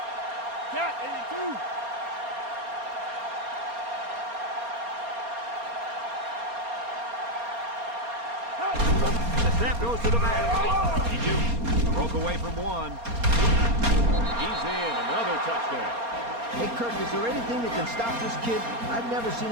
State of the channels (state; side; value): late; left; 4.3 ms